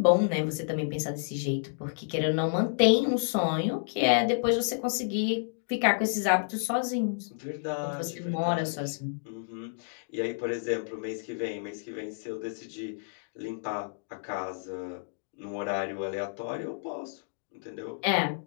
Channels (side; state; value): right; silent; digital silence